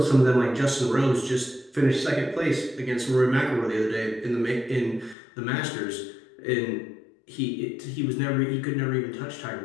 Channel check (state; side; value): drops out; right; at 5.2 s